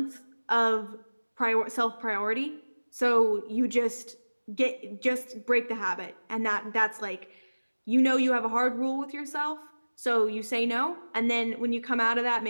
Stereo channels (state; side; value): inverted; both; correlation -1.00